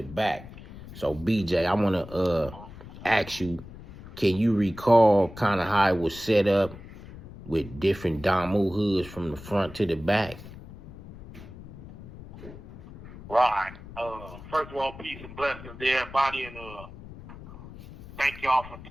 back. So BJ, I want to ask you, can you recall kind of how it was set up with different Damu hoods from the front to the back? Right. First of all, peace and blessings to everybody, and thank y'all for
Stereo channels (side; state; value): left; noise; rumble, 16 dB below the sound